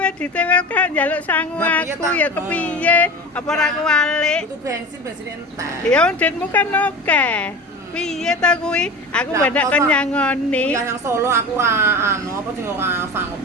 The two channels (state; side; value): normal; both; correlation 0.33